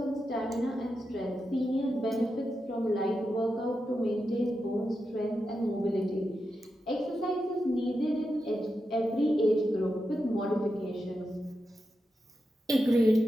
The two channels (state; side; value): normal; both; correlation 0.88